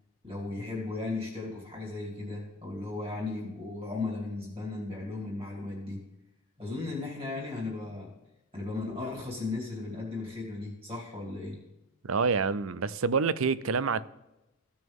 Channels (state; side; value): normal; both; correlation 0.14